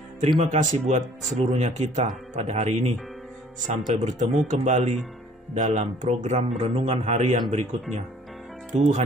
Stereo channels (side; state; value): both; normal; correlation 0.55